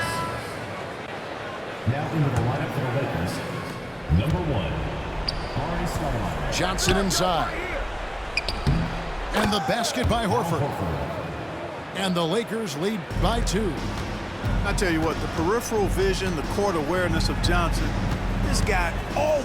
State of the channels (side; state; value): both; identical; correlation 1.00